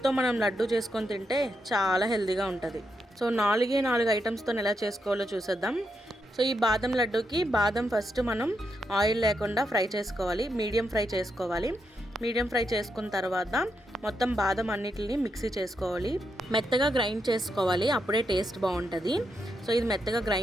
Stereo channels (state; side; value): normal; both; correlation 0.82